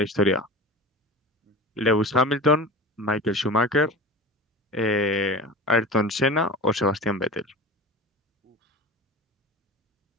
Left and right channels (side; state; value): both; normal; correlation 0.33